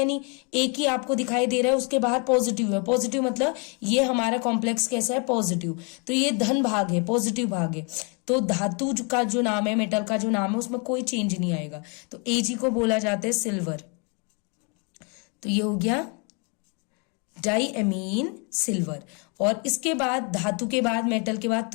नहीं, एक ही आपको दिखाई दे रहा है, उसके बाहर पॉजिटिव है। पॉजिटिव मतलब ये हमारा कॉम्प्लेक्स कैसा है, पॉजिटिव। तो ये धन भाग है, पॉजिटिव भाग है। तो धातु का जो नाम है, मेटल का जो नाम है, उसमें कोई चेंज नहीं आएगा। तो Ag को बोला जाता है सिल्वर। तो ये हो गया डाई एमीन सिल्वर। और इसके बाद धातु के बाद, मेटल के बाद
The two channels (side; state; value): right; quieter; 35.0 dB